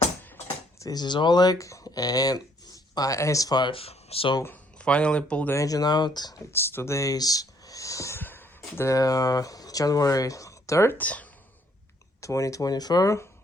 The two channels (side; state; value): both; normal; correlation 0.66